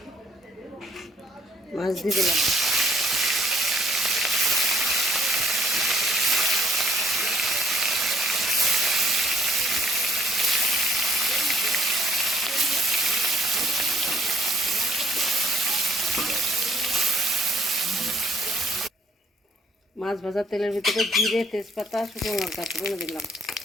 মাছ দিয়ে দিলাম। মাছ ভাজা তেলের ভিতরে জিরে, তেজপাতা, শুকনো লঙ্কা ফোড়নে দিলাম।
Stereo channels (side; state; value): both; normal; correlation 0.63